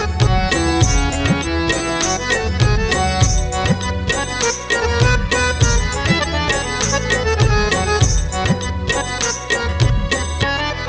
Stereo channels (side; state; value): both; identical; correlation 1.00